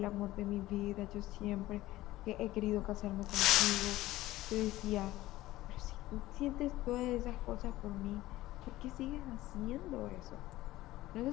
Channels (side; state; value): right; quieter; 16.7 dB